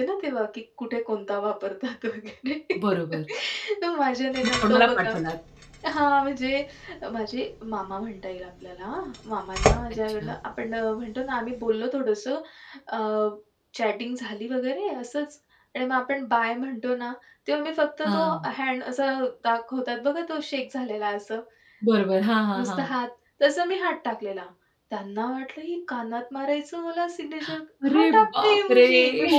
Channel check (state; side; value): identical; both; correlation 1.00